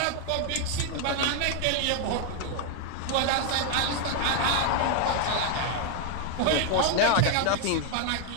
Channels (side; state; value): both; different; correlation 0.00